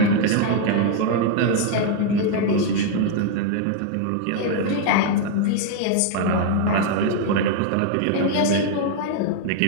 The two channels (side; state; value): both; different; correlation 0.00